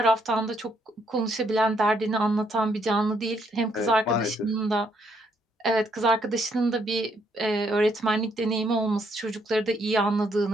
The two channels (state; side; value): normal; both; correlation 0.72